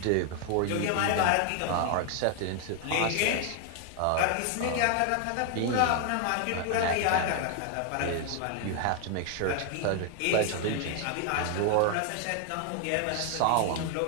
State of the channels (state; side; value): different; both; correlation 0.00